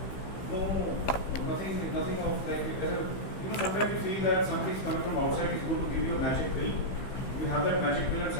Nothing of like sometimes you feel that somebody is coming from outside is going to give you a magic pill. You have that magic pill and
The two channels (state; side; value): late; right; 15 ms